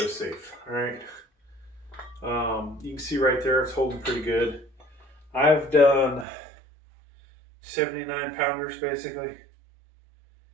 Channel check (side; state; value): left; drops out; at 6.2 s